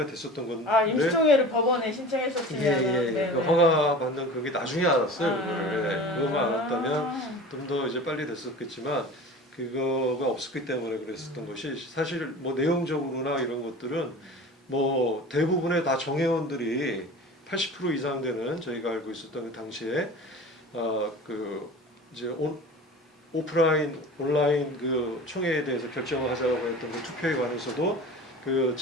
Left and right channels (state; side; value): normal; both; correlation 0.37